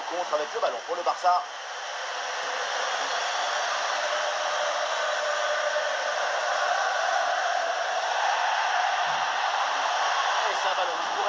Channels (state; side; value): identical; both; correlation 1.00